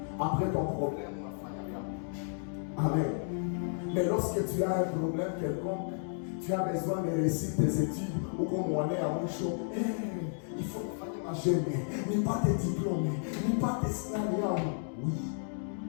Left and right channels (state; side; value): silent; right; digital silence